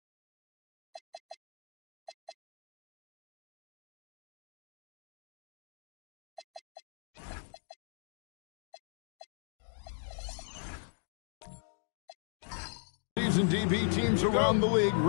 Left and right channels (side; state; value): right; drops out; at 6.6 s